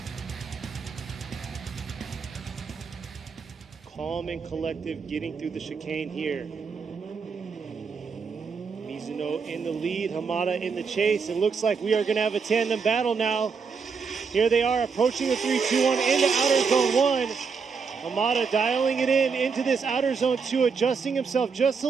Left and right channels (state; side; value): quieter; left; 5.5 dB